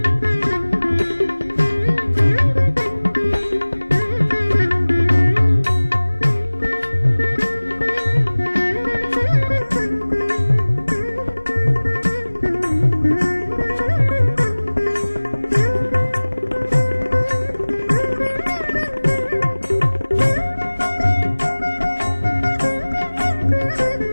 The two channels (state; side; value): inverted; both; correlation -1.00